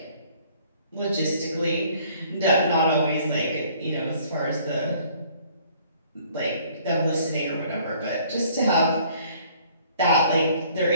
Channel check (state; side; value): inverted; both; correlation -0.58